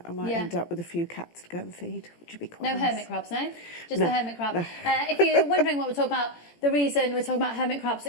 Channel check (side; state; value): right; late; 17 ms